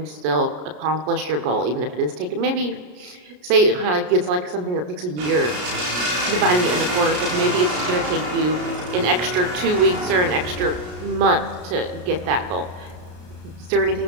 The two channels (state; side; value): late; left; 33 ms